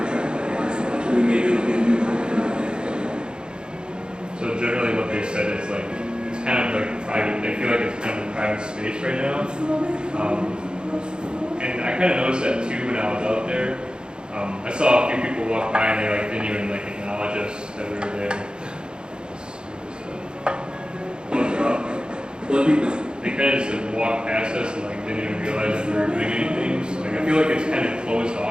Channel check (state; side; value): late; left; 0.049 ms